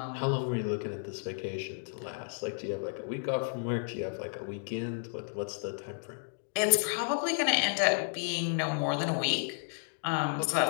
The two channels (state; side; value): silent; right; digital silence